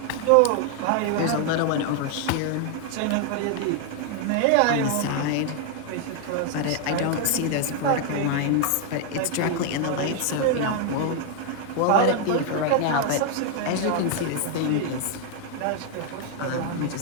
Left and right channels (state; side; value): different; both; correlation 0.00